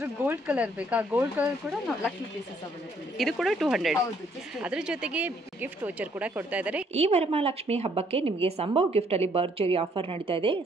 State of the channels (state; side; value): normal; both; correlation 0.66